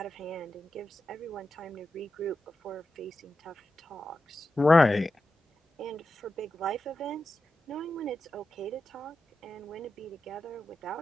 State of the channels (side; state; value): both; normal; correlation 0.90